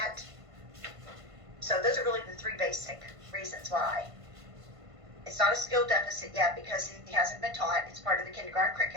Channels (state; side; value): late; left; 1.5 ms